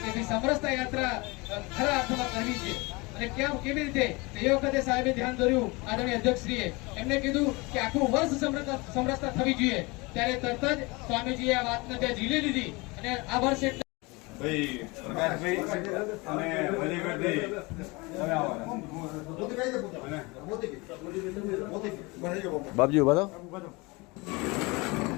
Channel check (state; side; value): quieter; right; 25.5 dB